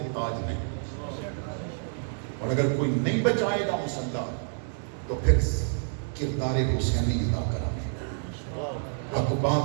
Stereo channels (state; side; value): silent; left; digital silence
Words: تاج میں، اور اگر کوئی نہیں بچائے گا مسلح تو پھر کردار حسینی ادا کرا۔ حق